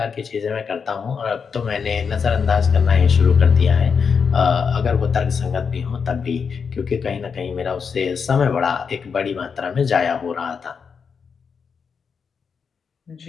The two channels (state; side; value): quieter; right; 6.0 dB